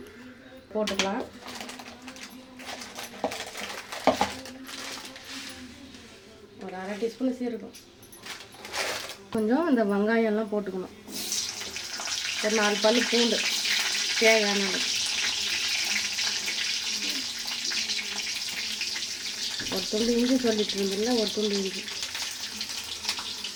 போட்டுக்கலாம். ஒரு அரை டீஸ்பூன் சீரகம். கொஞ்சம் இந்த வெங்காயம்லாம் போட்டுக்கணும். ஒரு 4 பல்லு பூண்டு தேவையான அளவு. ஒரு துண்டு இஞ்சி சொல்லிட்டு இருந்தில்ல, ஒரு துண்டு இஞ்சி.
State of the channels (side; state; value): both; identical; correlation 1.00